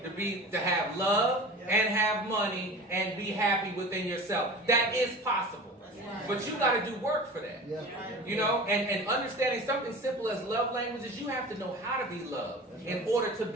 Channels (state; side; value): normal; both; correlation 0.36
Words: to have love and have money and be happy within yourself. That is possible. But you got to do work for that. And understanding something simple as love languages, you have to know how to be loved in order to